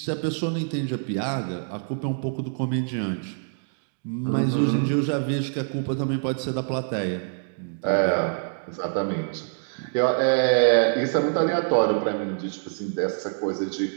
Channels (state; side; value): silent; left; digital silence